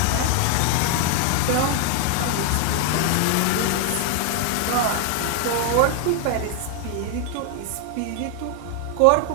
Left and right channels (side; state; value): both; different; correlation 0.00